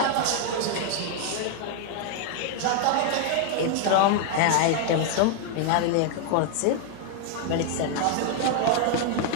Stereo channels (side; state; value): both; different; correlation 0.00